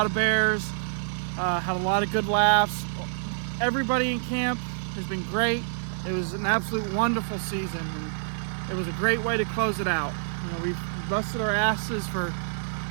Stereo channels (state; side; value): silent; left; digital silence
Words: of bears, had a lot of good laughs. Everybody in camp has been great. It was an absolute wonderful season, and it was a great way to close it out. You know, we've busted our asses